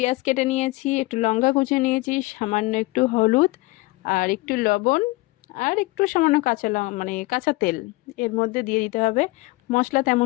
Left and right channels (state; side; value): quieter; right; 22.0 dB